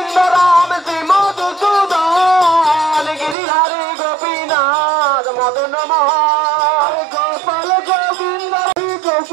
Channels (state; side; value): drops out; left; at 3.4 s